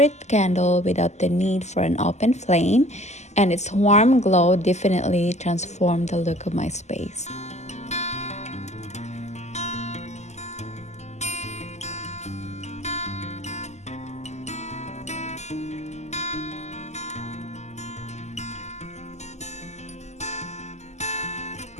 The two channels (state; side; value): late; right; 0.33 ms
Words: candle without the need for an open flame, and its warm glow definitely transformed the look of my space.